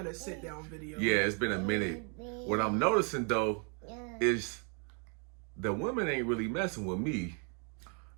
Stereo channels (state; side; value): quieter; left; 38.6 dB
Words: a sit down video. Yeah, it's been a minute. What I'm noticing though is the women ain't really messing with me.